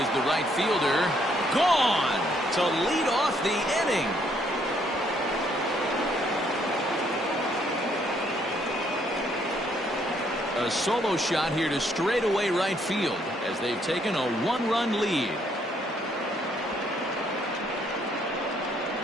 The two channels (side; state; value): both; normal; correlation 0.69